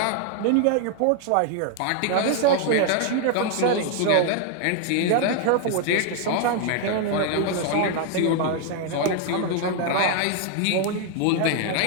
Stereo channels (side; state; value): both; different; correlation 0.00